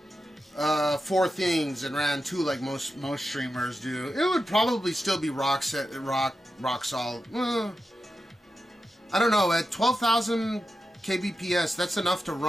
4 things and ran 2 like most streamers do, it would probably still be rock solid. I don't know. At 12,000 kbps, that's enough to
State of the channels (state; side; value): normal; both; correlation 0.90